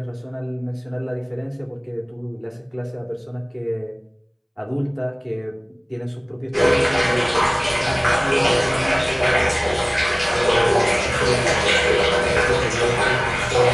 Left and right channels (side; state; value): both; identical; correlation 1.00